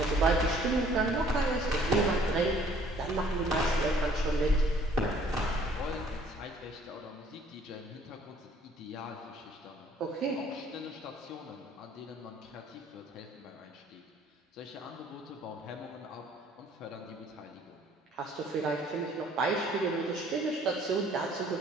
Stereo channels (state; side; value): normal; both; correlation 0.58